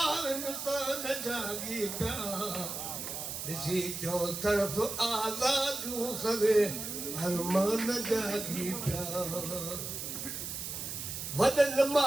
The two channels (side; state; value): right; noise; hiss, 6 dB below the sound